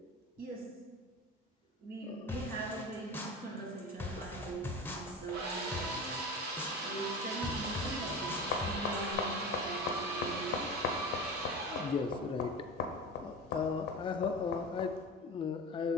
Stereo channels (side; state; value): both; normal; correlation 0.30